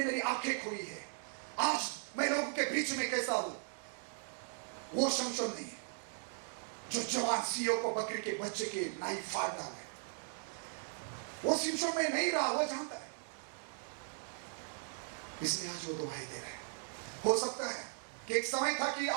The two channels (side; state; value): left; silent; 52 dB below the other